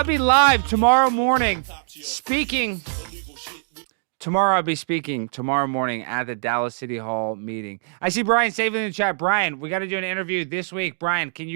be live tomorrow morning Tomorrow I'll be speaking tomorrow morning at the Dallas City Hall meeting. I see Brian Saving in the chat. Brian, we got to do an interview this week. Brian, can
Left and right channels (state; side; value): silent; left; digital silence